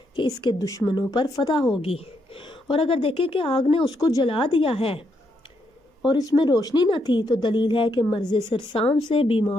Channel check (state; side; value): normal; both; correlation 0.78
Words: کہ اس کے دشمنوں پر فتح ہوگی، اور اگر دیکھے کہ آگ نے اس کو جلا دیا ہے اور اس میں روشنی نہ تھی تو دلیل ہے کہ مرض سرسام سے